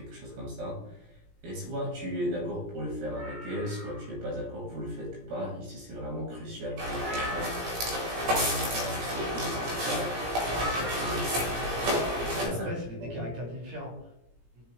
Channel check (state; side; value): late; left; 17 ms